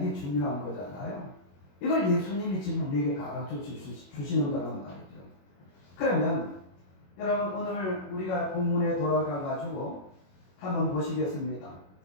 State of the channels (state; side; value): late; right; 21 ms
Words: 중요한 거잖아요. 이걸 예수님이 지금 우리에게 가르쳐 주시는 거란 말이죠. 그러면 여러분 오늘 우리가 본문에 돌아가 가지고 한번 보시겠습니다.